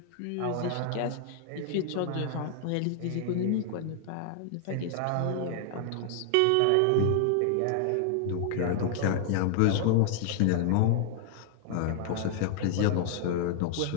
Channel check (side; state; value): both; different; correlation 0.00